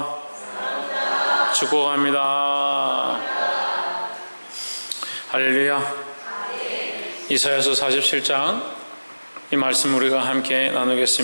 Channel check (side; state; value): both; inverted; correlation -1.00